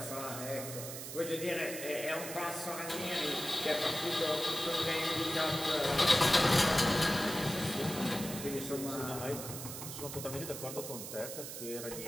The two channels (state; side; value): noise; right; hiss, 8 dB below the sound